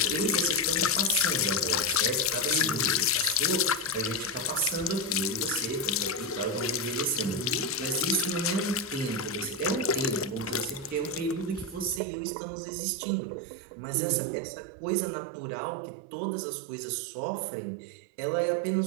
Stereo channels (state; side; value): drops out; left; at 12.0 s